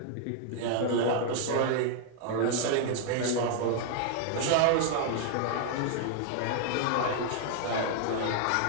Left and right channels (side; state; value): both; different; correlation 0.00